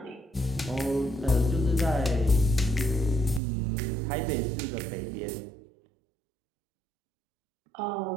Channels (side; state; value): left; drops out; at 3.4 s